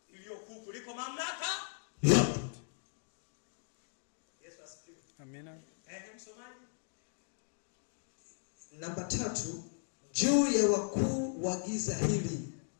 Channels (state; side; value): silent; right; digital silence